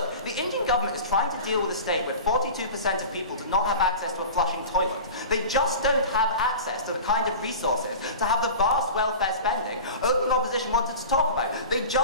the Indian government is trying to deal with a state where 42% of people do not have access to a flushing toilet. They just don't have access to the kind of resources to have the vast welfare spending opening opposition wanted to talk about. They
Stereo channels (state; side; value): inverted; both; correlation -0.34